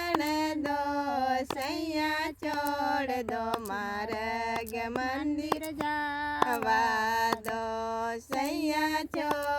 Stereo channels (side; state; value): both; identical; correlation 1.00